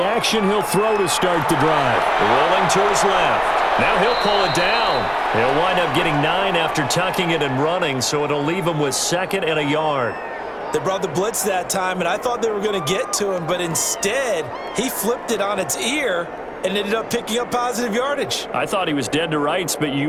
action, he'll throw to start the drive. Rolling to his left. Now he'll pull it down. He'll wind up getting 9 after tucking it and running, so it'll leave him with 2nd and a yard. They brought the blitz that time, and I thought they were going to get to him, but instead he flipped it on its ear and ended up picking up positive yardage. I thought he was dead to rights, but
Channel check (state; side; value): identical; both; correlation 1.00